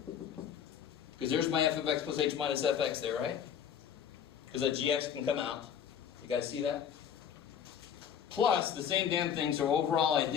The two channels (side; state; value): right; quieter; 8.5 dB